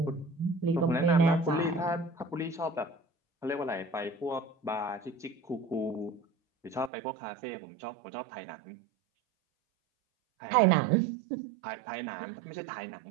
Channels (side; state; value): left; drops out; at 6.9 s